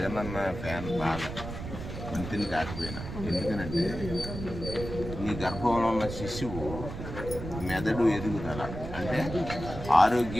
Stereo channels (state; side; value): noise; right; rumble, 8 dB below the sound